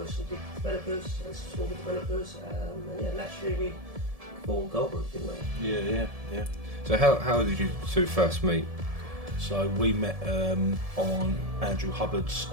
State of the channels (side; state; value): left; late; 1.7 ms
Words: some big developers and some smaller developers, and naturally we formed Goldbrooke, didn't we? Yeah. So how did you two first meet? So we met on Andrew Hubbard's